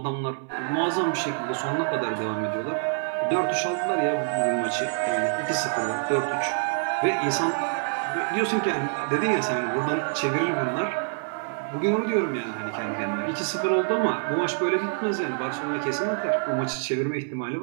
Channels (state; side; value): silent; left; 59 dB below the other